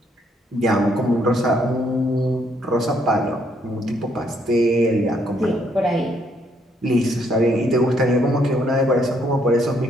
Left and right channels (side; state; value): both; normal; correlation 0.71